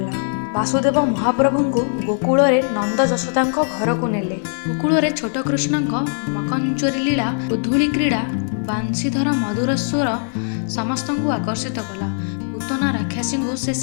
ବାସୁଦେବ ମହାପ୍ରଭୁଙ୍କୁ ଗୋକୁଳରେ ନନ୍ଦ ଯଶୋଦାଙ୍କ ଘରକୁ ନେଲେ। ଗୋକୁଳରେ ଛୋଟ କୃଷ୍ଣଙ୍କ ମକଞ୍ଚରୀ ଲୀଳା ଓ ଧୂଳି କ୍ରୀଡ଼ା ବାଂଶୀଧର ମଧୁର ସ୍ୱର ସମସ୍ତଙ୍କୁ ଆକର୍ଷିତ କଲା। ପୂତନା ରାକ୍ଷସୀଙ୍କୁ ସେ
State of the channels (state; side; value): silent; right; 63 dB below the other